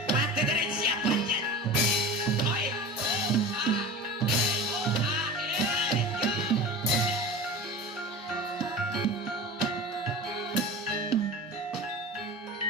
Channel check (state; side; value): normal; both; correlation 0.33